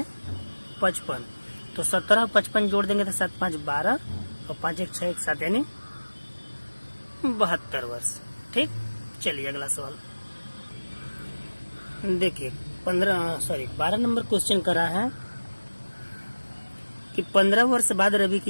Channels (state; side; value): inverted; both; correlation -1.00